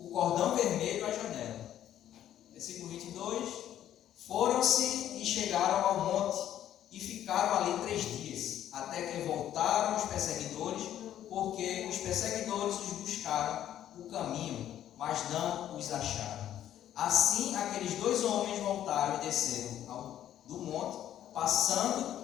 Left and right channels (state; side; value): quieter; right; 11.4 dB